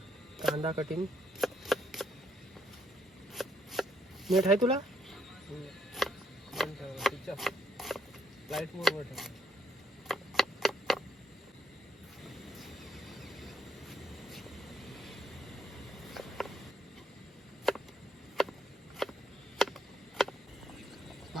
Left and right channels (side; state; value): both; normal; correlation 0.72